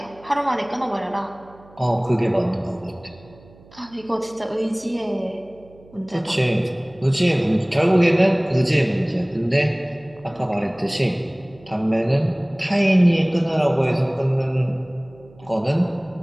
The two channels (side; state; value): right; noise; hum, 25 dB below the sound